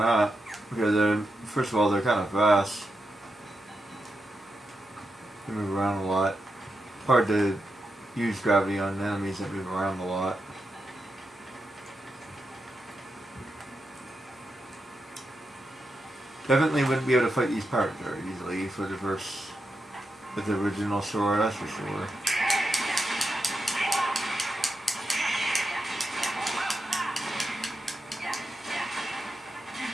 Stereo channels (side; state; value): both; normal; correlation 0.87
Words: because first of all, they're kind of fast. They move around a lot. Hard to use gravity on enemies that move around a lot. Definitely wouldn't be able to fight these pirates very easily for the with the original sword, that's for sure.